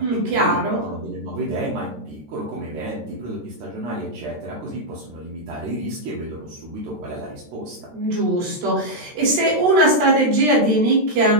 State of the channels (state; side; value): late; left; 13 ms